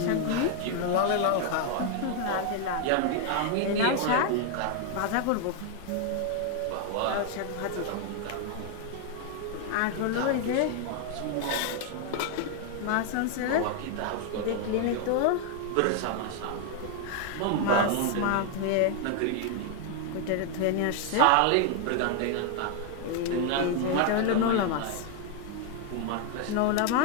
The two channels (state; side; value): different; both; correlation 0.00